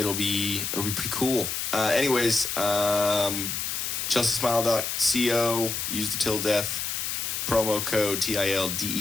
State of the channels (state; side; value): noise; left; hiss, 2 dB below the sound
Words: be pretty cool. Anyways, ChelseaSmile.co. Use the Till Death promo code